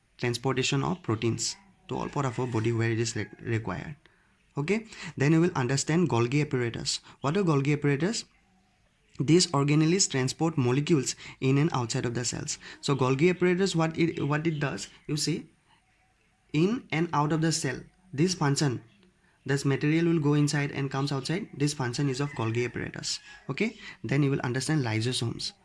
transportation of proteins to all part of our body where it is required. Okay, then you will understand Golgi apparatus. What are Golgi apparatus? These organelles transport molecules in and outside of the cells. So Golgi apparatus, what it does, you see, in and out of the cell, this function, this material will go inside and comes outside. This function is of Golgi apparatus. Okay, then you will understand lysosomes.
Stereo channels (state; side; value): identical; both; correlation 1.00